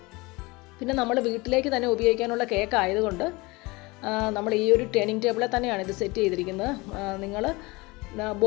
പിന്നെ നമ്മൾ വീട്ടിലേക്ക് തന്നെ ഉപയോഗിക്കാനുള്ള കേക്ക് ആയതുകൊണ്ട് നമ്മൾ ഈ ഒരു ടേണിംഗ് ടേബിളിൽ തന്നെയാണ് ഇത് സെറ്റ് ചെയ്തിരിക്കുന്നത്. നിങ്ങൾ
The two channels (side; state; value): right; quieter; 23.8 dB